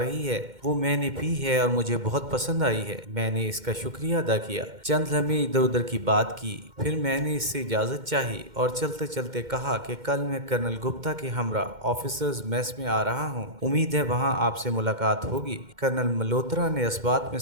है वो मैंने पी है और मुझे बहुत पसंद आई है। मैंने इसका शुक्रिया अदा किया। चंद लम्हे इधर उधर की बात की, फिर मैंने इससे इजाजत चाही और चलते चलते कहा कि कल मैं कर्नल गुप्ता के हमरा ऑफिसर्स मेस में आ रहा हूँ। उम्मीद है वहाँ आपसे मुलाकात होगी। कर्नल मल्होत्रा ने इस बात में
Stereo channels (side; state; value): left; late; 2.1 ms